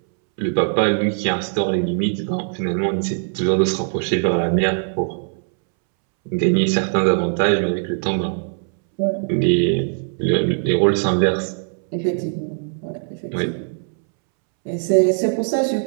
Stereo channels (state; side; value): silent; left; 65 dB below the other